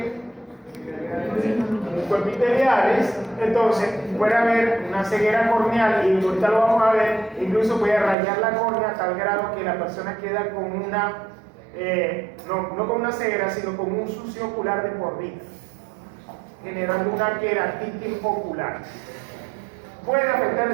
Cuerpiteliales. Entonces puede haber una ceguera corneal y ahorita lo vamos a ver, incluso puede rayar la córnea a tal grado que la persona queda con una no con una ceguera, sino con un sucio ocular de por vida, generando una queratitis ocular. Puede afectar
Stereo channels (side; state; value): left; drops out; at 8.2 s